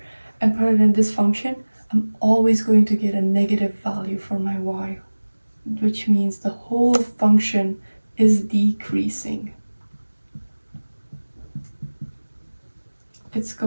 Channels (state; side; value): inverted; both; correlation -1.00